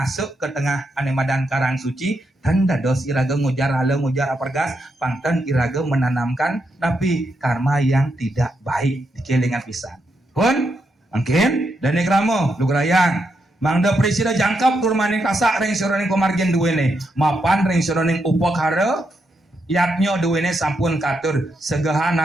ke tengah anemadan karang suci dan dados iraga ngujar hala ngujar apargas pangten iraga menanamkan napi karma yang tidak baik di kelingan pisan. Pun mungkin dan kramo lugrayang mangda presida jangkap turmaning kasak ring soroning komargen duwene mapan ring soroning upakara yatnyo duwene sampun katur segahan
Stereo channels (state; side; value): normal; both; correlation 0.82